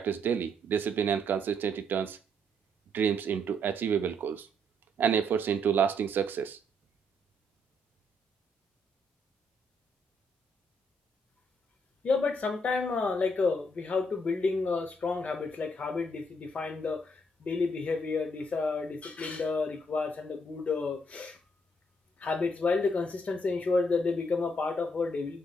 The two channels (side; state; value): both; normal; correlation 0.72